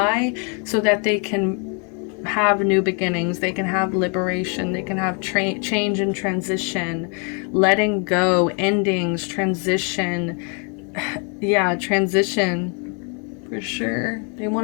so that they can have new beginnings. They can have liberation. They can have change and transition, letting go, endings, transition. Yeah, transition for sure. They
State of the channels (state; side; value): quieter; right; 37.5 dB